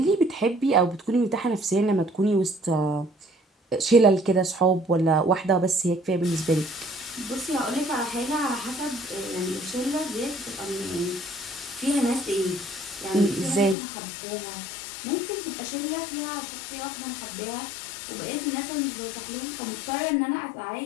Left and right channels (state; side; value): drops out; right; at 13.8 s